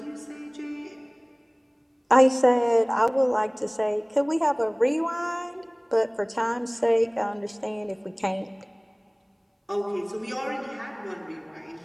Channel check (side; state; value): both; identical; correlation 1.00